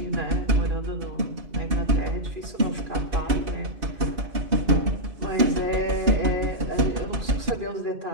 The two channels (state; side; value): late; left; 2.6 ms